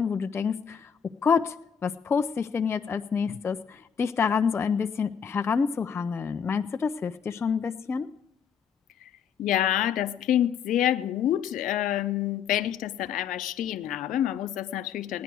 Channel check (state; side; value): quieter; right; 7.6 dB